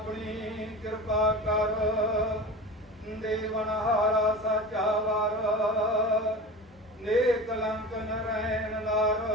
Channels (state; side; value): normal; both; correlation 0.32